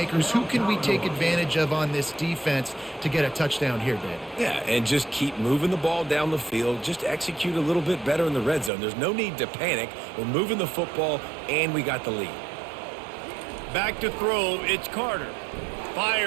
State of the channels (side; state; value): left; drops out; at 8.7 s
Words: who can we take advantage of on this defense to get a touchdown here, Dave. Yeah, and just keep moving the ball down the field. Just execute a little bit better in the red zone. There's no need to panic. We're moving the football, and we got the lead. Back to throw, it's Carter.